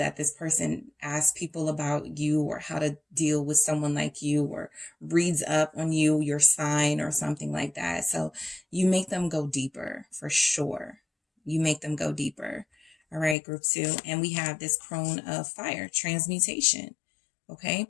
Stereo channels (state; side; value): drops out; right; at 13.4 s